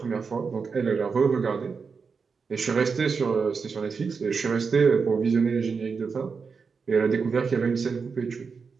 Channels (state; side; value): quieter; left; 5.3 dB